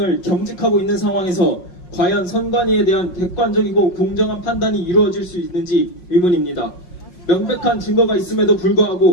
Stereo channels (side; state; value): right; late; 5.6 ms